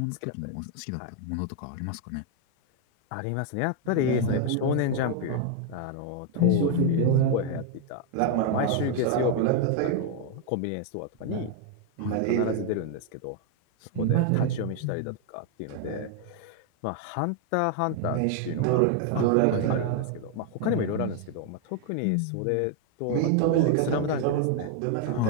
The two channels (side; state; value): both; different; correlation 0.00